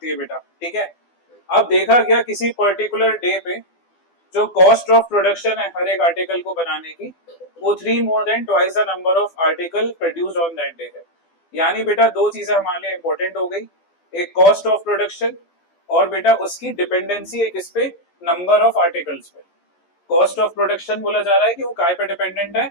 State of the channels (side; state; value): right; late; 12 ms